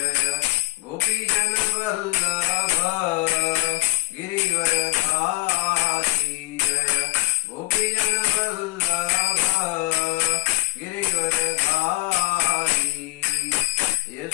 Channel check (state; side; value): quieter; right; 20.2 dB